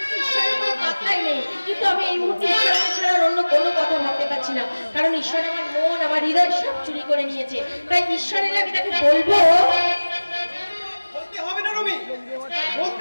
ঈশ্বরের কোনো পাত্তাই নেই। কিন্তু আমি এই মুহূর্তে ঈশ্বরকে ছাড়া অন্য কোনো কথা ভাবতে পারছি না, কারণ ঈশ্বর আমার মন আমার হৃদয় সব চুরি করে নিয়েছে। তাই ঈশ্বরের আমি তাকে বলবো। বলতে হবে না রবি,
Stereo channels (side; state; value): both; inverted; correlation -1.00